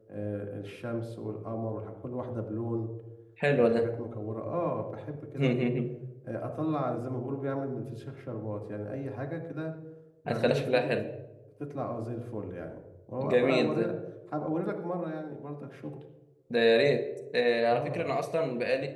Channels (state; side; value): identical; both; correlation 1.00